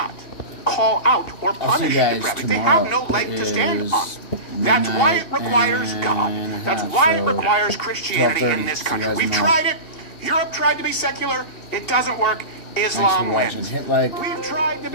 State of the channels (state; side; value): late; right; 2.8 ms